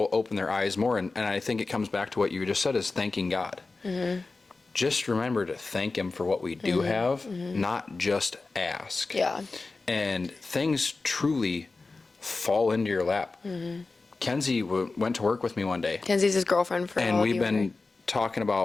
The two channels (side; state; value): right; quieter; 3.7 dB